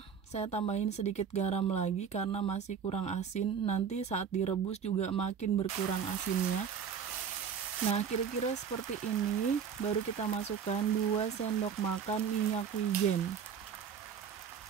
Saya tambahin sedikit garam lagi karena masih kurang asin. Nanti saat direbus juga makin berkurang asinnya. Nah, kira-kira seperti ini. Baru kita masukkan 2 sendok makan minyak wijen.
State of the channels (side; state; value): left; quieter; 7.2 dB